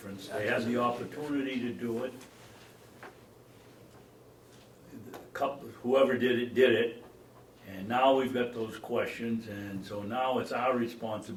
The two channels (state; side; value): identical; both; correlation 1.00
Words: They had the opportunity to do it. Whoever did it, and now we've got those questions, and so now it's our